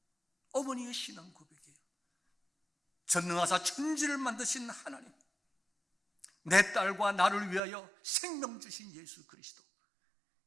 어머니의 신앙 고백이에요. 전능하사 천지를 만드신 하나님, 내 딸과 나를 위하여 생명 주신 예수 그리스도,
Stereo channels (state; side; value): drops out; left; at 7.6 s